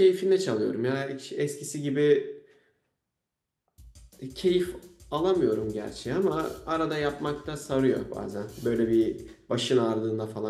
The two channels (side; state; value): both; identical; correlation 1.00